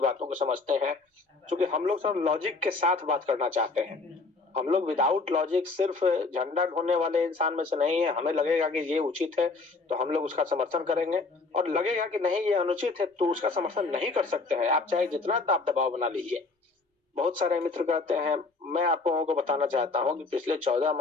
बातों को समझते हैं। क्योंकि हम लोग सब लॉजिक के साथ बात करना चाहते हैं। हम लोग विदाउट लॉजिक सिर्फ़ झंडा ढोने वाले इंसान में से नहीं है। हमें लगेगा कि ये उचित है, तो हम लोग उसका समर्थन करेंगे और लगेगा कि नहीं ये अनुचित है, तो उसका समर्थन नहीं कर सकते हैं। आप चाहे जितना दाब-दबाव बना लीजिए। बहुत सारे मित्र कहते हैं मैं आप लोगों को बताना चाहता हूँ कि पिछले 14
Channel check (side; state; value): right; quieter; 3.9 dB